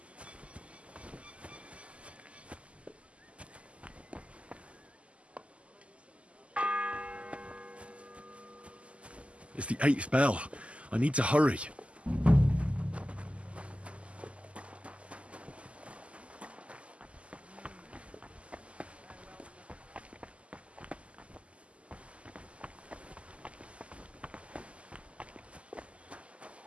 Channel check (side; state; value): left; late; 0.059 ms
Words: It's the 8th bell. I need to hurry.